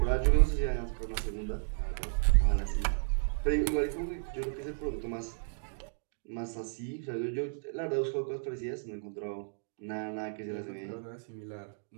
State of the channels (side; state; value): left; silent; digital silence